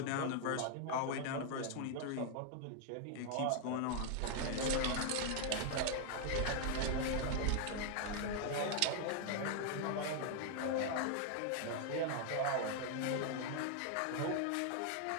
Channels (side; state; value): both; different; correlation 0.00